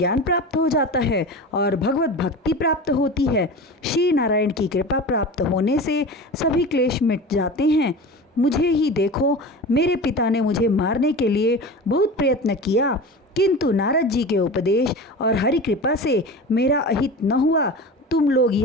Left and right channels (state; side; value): normal; both; correlation 0.31